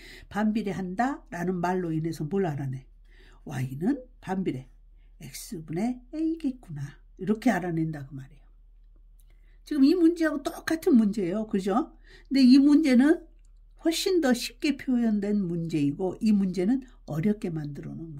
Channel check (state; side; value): identical; both; correlation 1.00